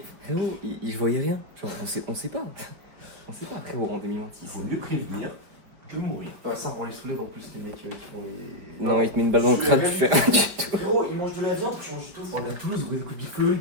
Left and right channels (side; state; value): left; late; 5.1 ms